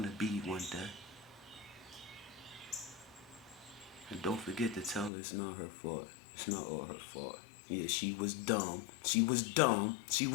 to be one day. And don't forget to tell her it's not her fault. It's not all her fault. Yeah, she was dumb. She was dumb. She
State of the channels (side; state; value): right; drops out; at 5.1 s